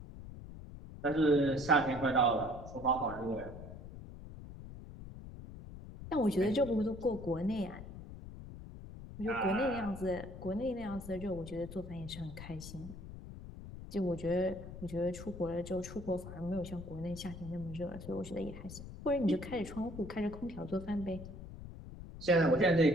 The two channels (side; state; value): left; noise; rumble, 12 dB below the sound